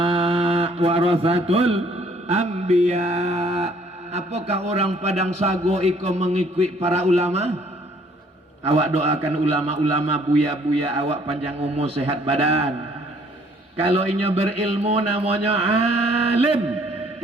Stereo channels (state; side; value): normal; both; correlation 0.61